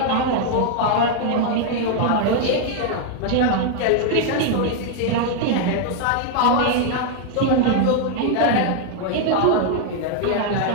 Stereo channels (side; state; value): both; different; correlation 0.00